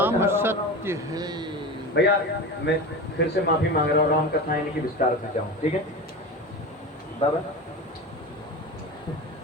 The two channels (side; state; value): both; normal; correlation 0.27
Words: सत्य है। भैया मैं फिर से माफी मांग रहा हूँ, राम कथा यानी कि विस्तार से जाऊं, ठीक है बाबा?